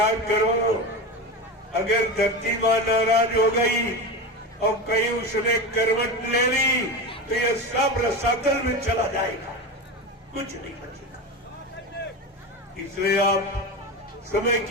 करो, अगर धरती माँ नाराज हो गई और कहीं उसने करवट ले ली तो ये सब रसातल में चला जाएगा, कुछ नहीं बचेगा। इसलिए आप समय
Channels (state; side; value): normal; both; correlation 0.23